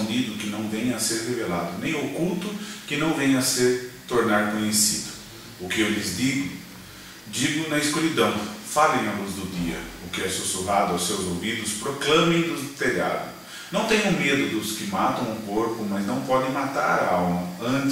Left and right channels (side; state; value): both; identical; correlation 1.00